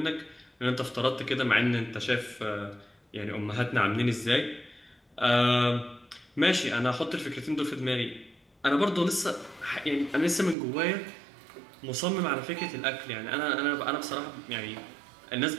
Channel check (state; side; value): drops out; left; at 10.6 s